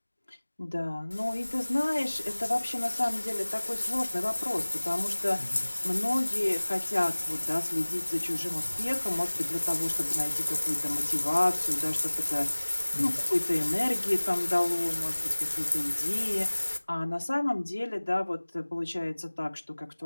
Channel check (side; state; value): both; inverted; correlation -1.00